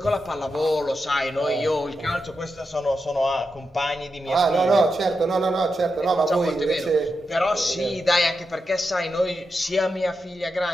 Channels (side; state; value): both; normal; correlation 0.87